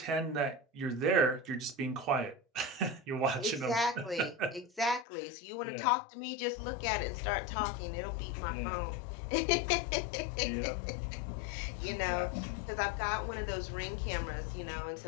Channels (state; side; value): drops out; right; at 5.1 s